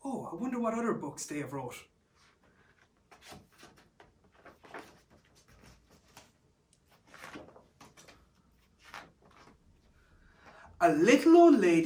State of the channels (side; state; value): both; identical; correlation 1.00